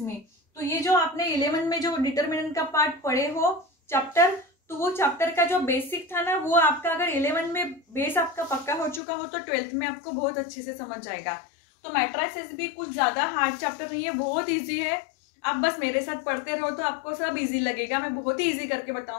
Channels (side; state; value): right; drops out; at 9.0 s